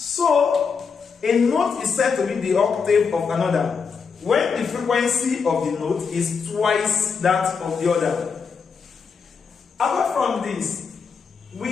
a note is said to be the octave of another when the frequency of the note is twice that of the other. Apart from this,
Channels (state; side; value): quieter; right; 5.7 dB